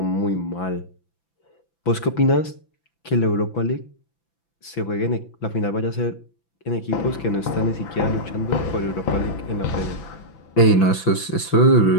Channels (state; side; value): late; right; 5.9 ms